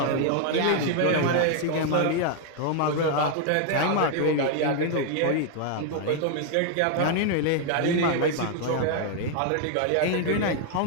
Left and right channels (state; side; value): different; both; correlation 0.00